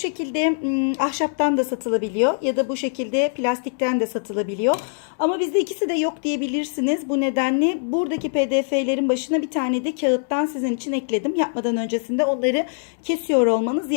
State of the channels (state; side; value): silent; right; digital silence